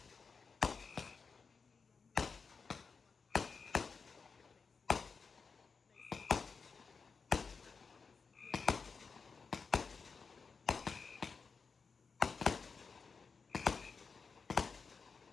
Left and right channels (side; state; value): right; quieter; 5.1 dB